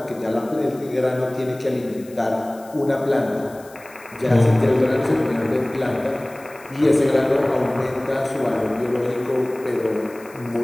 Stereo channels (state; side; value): noise; left; hiss, 24 dB below the sound